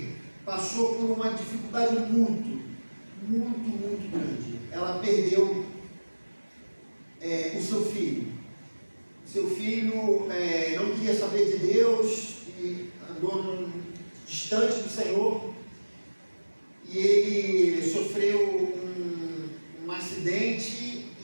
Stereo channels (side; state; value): both; inverted; correlation -1.00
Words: passou por uma dificuldade muito grande. Ela perdeu o seu filho. Seu filho não queria saber de Deus e andou distante do Senhor, e ele sofreu um acidente,